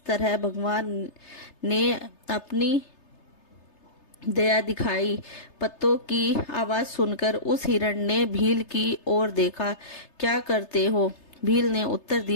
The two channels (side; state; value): right; late; 3.3 ms